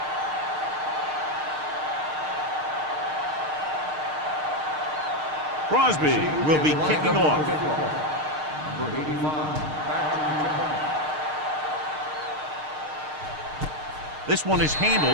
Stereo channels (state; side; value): late; left; 6.5 ms